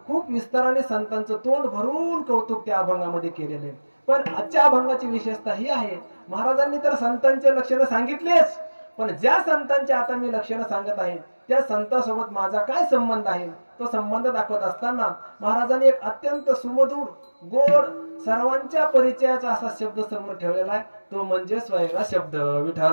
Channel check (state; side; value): inverted; both; correlation -1.00